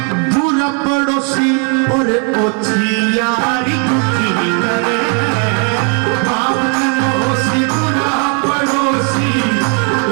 बुरा पड़ोसी और ओछी यारी दुखी करे। बाप के मोसी बुरा पड़ोसी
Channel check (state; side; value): quieter; left; 38.9 dB